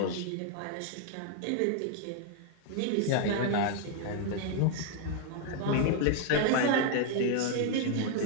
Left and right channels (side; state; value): both; different; correlation 0.00